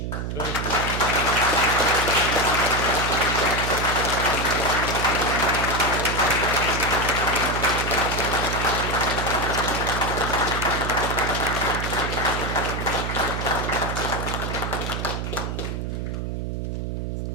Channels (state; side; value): noise; right; hum, 3 dB below the sound